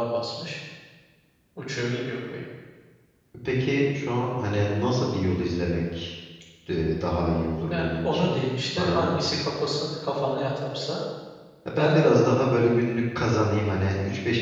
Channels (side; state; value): both; identical; correlation 1.00